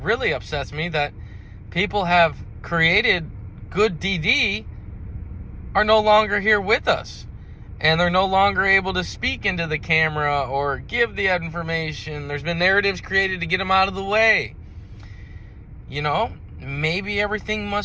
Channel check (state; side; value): identical; both; correlation 1.00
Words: really upsets me that people have created good DD are no longer here with us, and they're no longer able to speak into the camera or give the information. There's been narratives created to get them out of the way. You know, maybe everything